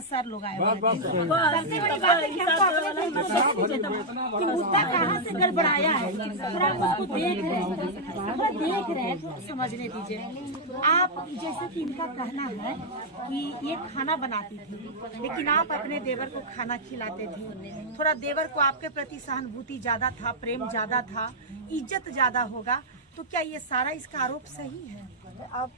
सर लोग आए। सबसे बड़ी बात है कि हमको अपने कि मुद्दा कहाँ से गड़बड़ाया है, थोड़ा उसको देख रहे हैं, समझने दीजिए। आप जैसे कि इनका कहना है कि ये खाना बनाती थी, लेकिन आप अपने देवर को खाना खिलाते थे। थोड़ा देवर को आपके प्रति सहानुभूति ज्यादा था, प्रेम ज्यादा था, इज्जत ज्यादा होगा, तो क्या ये सारा इसका आरोप सही है?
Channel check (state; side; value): normal; both; correlation -0.05